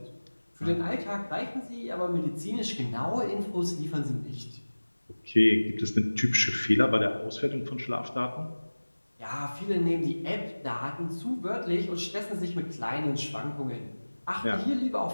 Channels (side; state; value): both; inverted; correlation -1.00